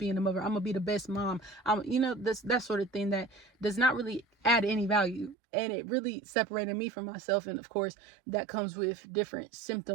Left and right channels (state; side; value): drops out; left; at 5.4 s